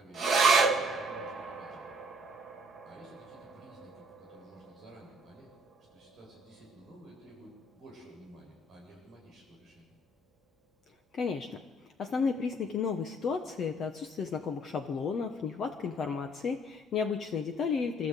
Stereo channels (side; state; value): both; normal; correlation 0.60